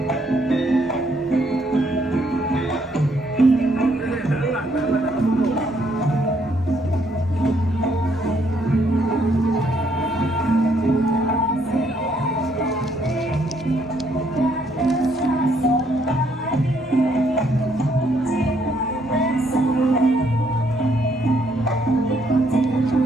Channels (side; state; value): both; normal; correlation 0.70